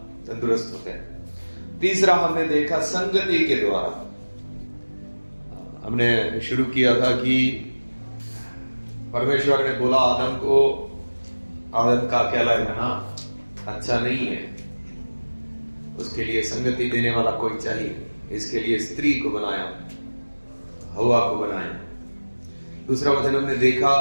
तंदुरुस्त होते हैं। तीसरा हमने देखा संगति के द्वारा। हमने शुरू किया था कि परमेश्वर ने बोला आदम को, आदम का अकेला रहना अच्छा नहीं है, उसके लिए संगति देने वाला कोई चाहिए। इसके लिए स्त्री को बनाया, हवा को बनाया। दूसरा वचन हमने देखा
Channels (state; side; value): inverted; both; correlation -1.00